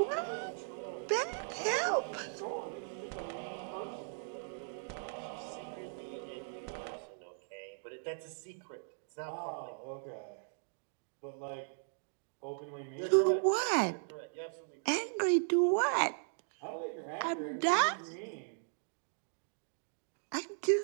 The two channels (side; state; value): left; silent; digital silence